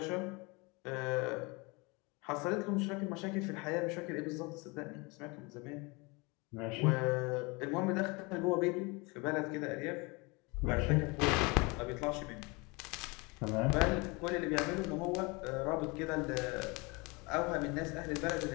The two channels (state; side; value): quieter; right; 27.3 dB